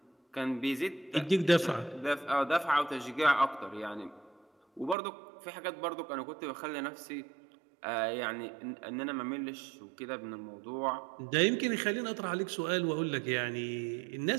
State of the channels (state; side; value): drops out; left; at 5.0 s